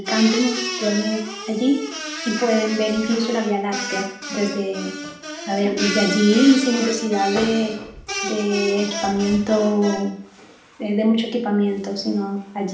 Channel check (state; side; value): identical; both; correlation 1.00